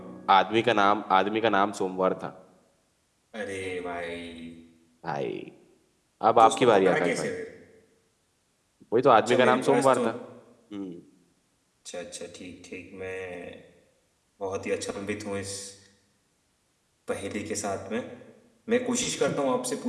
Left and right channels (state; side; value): identical; both; correlation 1.00